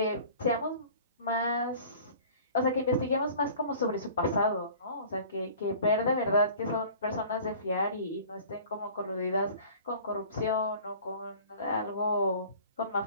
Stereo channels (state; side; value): inverted; both; correlation -0.46